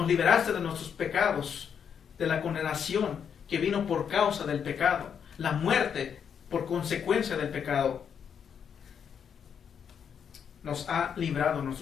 liberaste de nuestros pecados, de la condenación que vino por causa del pecado, la muerte por consecuencia del pecado. Nos ha librado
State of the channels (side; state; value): right; quieter; 7.6 dB